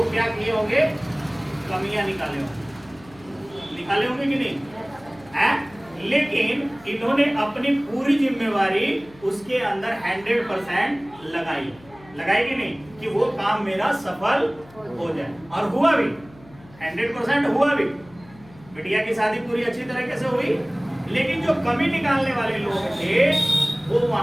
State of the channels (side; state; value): left; noise; hum, 24 dB below the sound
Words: क्या किए होंगे? कमियां निकाले होंगे कि नहीं है? लेकिन इन्होंने अपनी पूरी जिम्मेवारी उसके अंदर 100% लगाई कि नहीं, कि वो काम मेरा सफल हो जाए, और हुआ भी, 100% हुआ भी। बिटिया की शादी पूरी अच्छी तरीके से हुई, लेकिन जो कमी निकालने वाले लोग थे वो